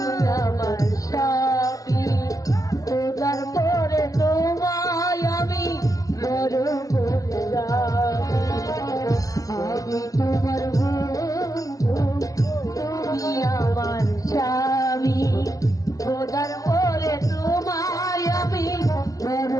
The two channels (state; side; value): late; right; 0.17 ms